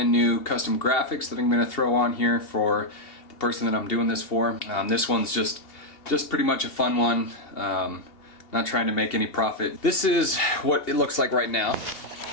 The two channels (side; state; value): right; late; 2.8 ms